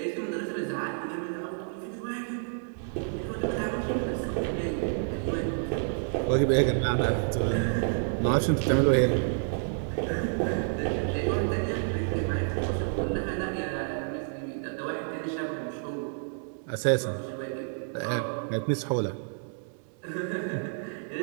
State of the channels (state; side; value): silent; left; digital silence